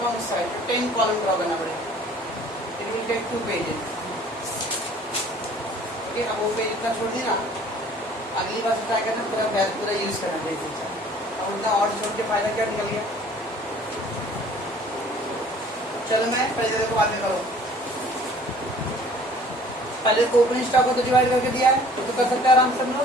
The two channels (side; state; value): both; normal; correlation 0.52